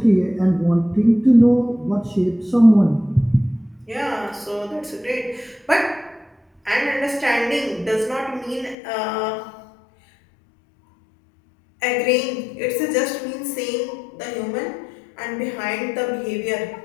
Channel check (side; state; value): right; drops out; at 8.8 s